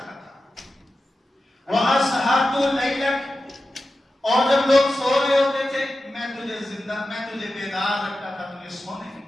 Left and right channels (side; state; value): both; normal; correlation 0.93